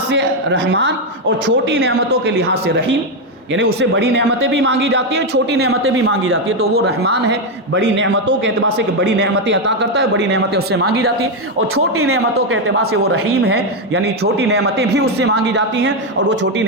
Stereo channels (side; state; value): both; normal; correlation 0.05